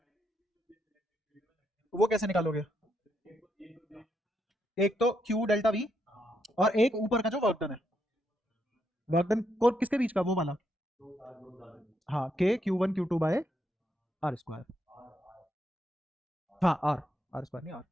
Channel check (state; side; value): normal; both; correlation 0.79